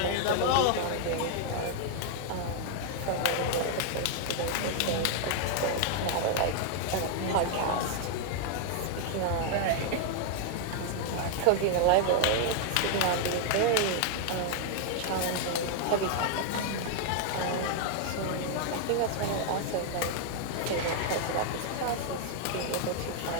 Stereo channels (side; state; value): both; different; correlation 0.00